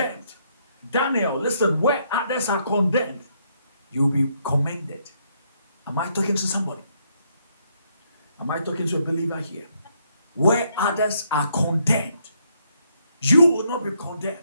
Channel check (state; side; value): inverted; both; correlation -0.73